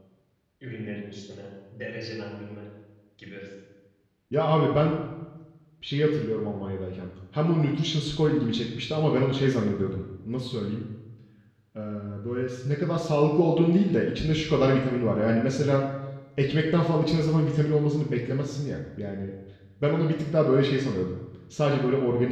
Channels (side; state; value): both; identical; correlation 1.00